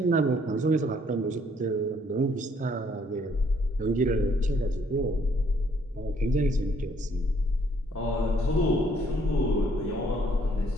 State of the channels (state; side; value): normal; both; correlation 0.65